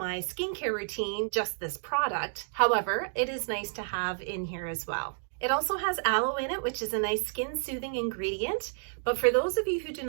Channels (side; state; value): left; silent; digital silence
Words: skincare routine, just this product. However, it is nice to have in here as well. It also has aloe in it, which is a nice skin-soothing ingredient. But for those of you who do